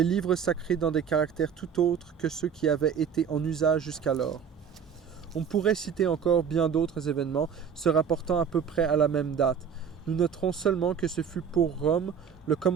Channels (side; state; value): left; quieter; 7.3 dB